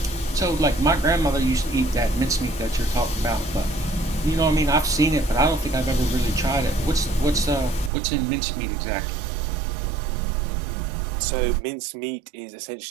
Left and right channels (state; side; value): drops out; left; at 7.9 s